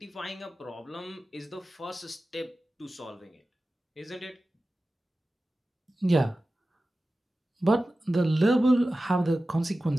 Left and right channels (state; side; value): normal; both; correlation 0.95